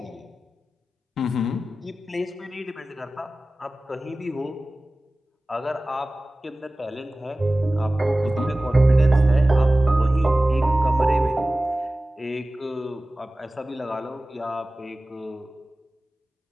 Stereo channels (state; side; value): normal; both; correlation 0.97